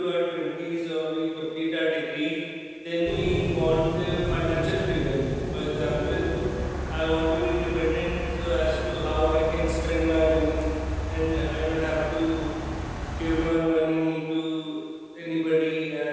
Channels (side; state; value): both; identical; correlation 1.00